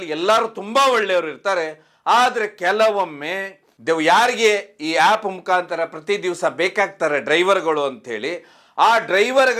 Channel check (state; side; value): identical; both; correlation 1.00